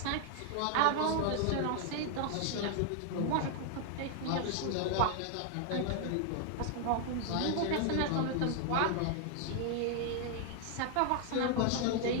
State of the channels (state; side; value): different; both; correlation 0.00